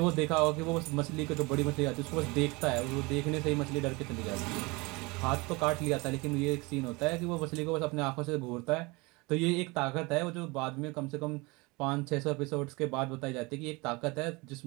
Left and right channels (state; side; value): quieter; left; 25.4 dB